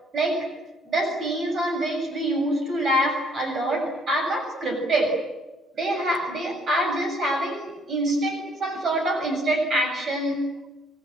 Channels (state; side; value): normal; both; correlation 0.63